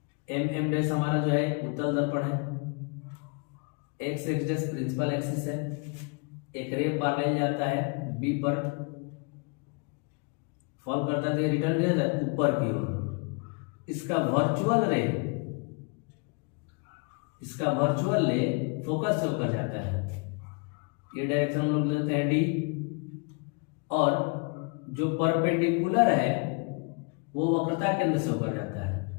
एम डैश हमारा जो है उत्तल दर्पण है, X X dash principal axis है, एक रे पैरेलल जाता है बी पर, फॉल करता है तो ये रिटर्न किया जाता है ऊपर की ओर। इसका वर्चुअल ले फोकस से होकर जाता है, ये डायरेक्शन हम लोग लेते हैं डी, और जो परपेंडिकुलर है वो वक्रता केंद्र से होकर जाता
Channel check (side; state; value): right; quieter; 34.2 dB